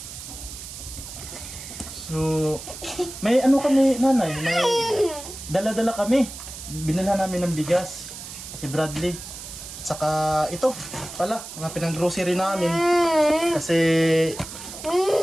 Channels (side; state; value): right; noise; hiss, 12 dB below the sound